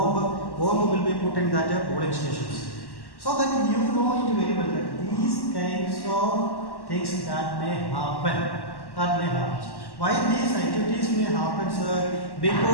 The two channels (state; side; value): late; right; 1.1 ms